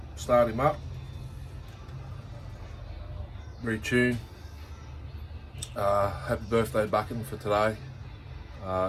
start him up, retune. Happy birthday Bucking for today.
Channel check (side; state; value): both; identical; correlation 1.00